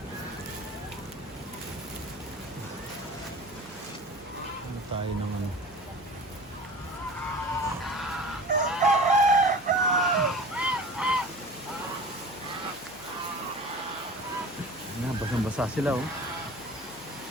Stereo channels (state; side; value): noise; right; hum, 24 dB below the sound